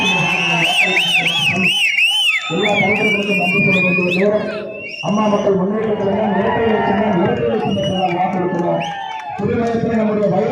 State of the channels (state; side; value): identical; both; correlation 1.00